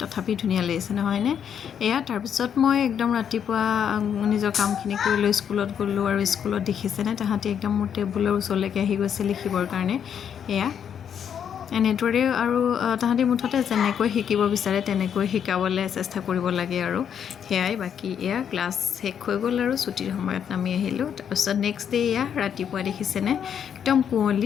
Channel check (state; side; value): quieter; right; 8.3 dB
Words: তথাপি ধুনিয়া লাগিছে নহয় নে এয়া তাৰ পিছত মই একদম ৰাতিপুৱা নিজৰ কামখিনি কৰি লৈ স্কুলত গলো আৰু স্কুলত দেখিছেনে তাহাঁতি একদম মোৰ টেবুলৰ ওচৰলৈকে আহি গৈছে লিখিবৰ কাৰণে এয়া এনেদৰে আৰু তাহাঁতি মুঠতে যেনেকৈ শিকিব বিচাৰে তেনেকৈ শিকাবলৈ চেষ্টা কৰিব লাগে আৰু হেয়াই বাকি এয়া ক্লাছ শেষ হৈ গ'ল আৰু ছুটিৰ সময়ত নামি আহিলোঁ তাৰপিছত নেক্সট ডে এয়া ৰাতিপুৱা দেখিছেনে একদম